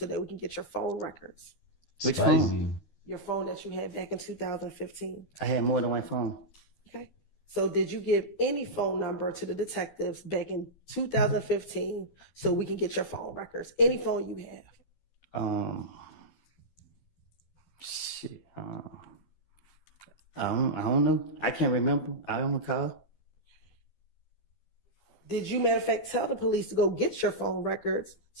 that we can get your phone records? Which Spicy. phone? Your phone that you had back in 2015. I had more than one phone. Okay. So did you give any phone number to the detectives back in 2015 so we can get your phone records? Any phone you have? Shit. I don't know. I can't remember. I don't recall. Did you, matter of fact, tell the police to go get your phone records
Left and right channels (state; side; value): late; right; 12 ms